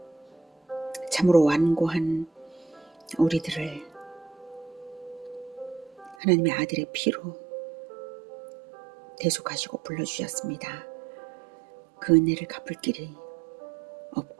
참으로 완고한 우리들을 하나님의 아들의 피로 대속하시고 불러주셨습니다. 그 은혜를 갚을 길이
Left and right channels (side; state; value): left; drops out; at 6.2 s